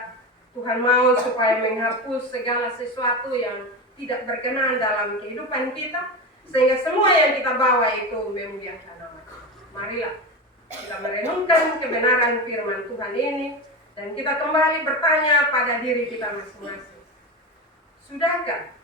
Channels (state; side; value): normal; both; correlation 0.21